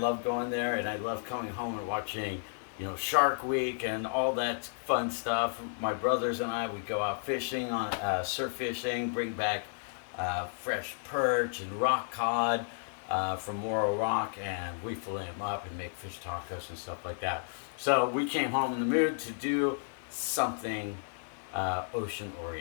going there, and I love coming home and watching, Shark Week and all that fun stuff. My brothers and I, we go out fishing on surf fishing, bring back fresh perch and rock cod from Morro Rock, and we fillet them up and make fish tacos and stuff like that. So we came home in the mood to do something ocean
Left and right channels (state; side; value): silent; right; digital silence